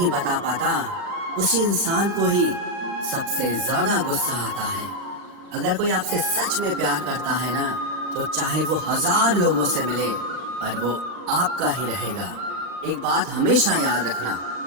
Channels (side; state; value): left; late; 39 ms